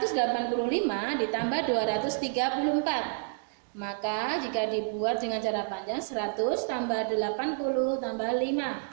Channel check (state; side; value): silent; left; digital silence